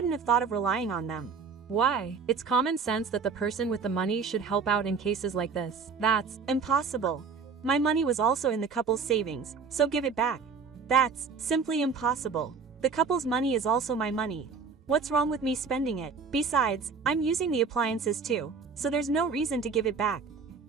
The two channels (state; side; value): quieter; left; 5.3 dB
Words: have thought of relying on them. Why? It's common sense that the person with the money should help out in cases like this. That's impossible. My money was also in the couple's savings, so give it back. That's simply impossible. The couple's money is also my money. What's wrong with me spending it? Besides, I'm using the appliances too, so there's no reason to give it back.